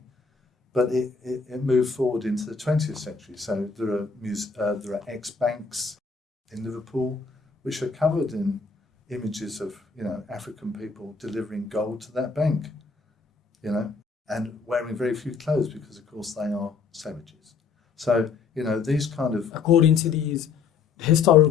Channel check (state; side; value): quieter; right; 5.2 dB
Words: but it moved forward into the 20th century. So there are ex-banks in Liverpool which are covered in images of African people delivering gold to that bank, and wearing very few clothes because, of course, they are savages. So, these kind of... According to these